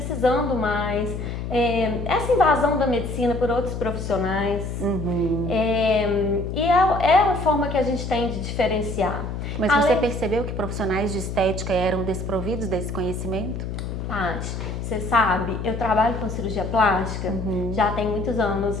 mais. Essa invasão da medicina por outros profissionais. E é a forma que a gente tem de diferenciar. Mas você percebeu que profissionais de estética eram desprovidos desse conhecimento? Paty, você sabe, eu trabalho com cirurgia plástica já tem muitos anos,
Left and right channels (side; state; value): left; noise; hum, 5 dB below the sound